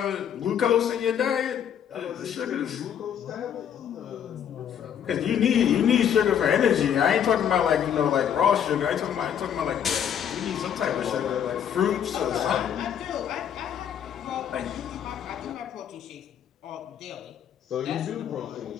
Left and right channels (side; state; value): right; quieter; 8.9 dB